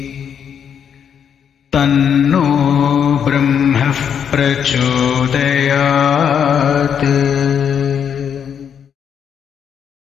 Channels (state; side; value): quieter; right; 7.9 dB